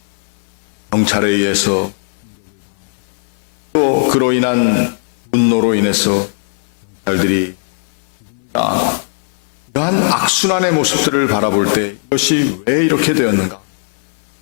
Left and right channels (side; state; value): right; silent; 57 dB below the other